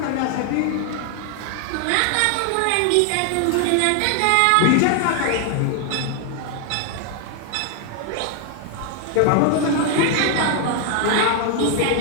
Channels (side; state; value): both; different; correlation 0.00